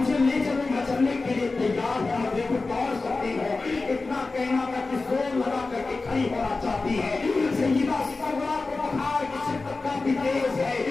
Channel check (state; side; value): quieter; right; 3.7 dB